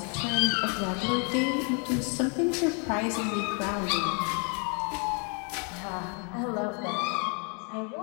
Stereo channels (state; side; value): quieter; right; 37.1 dB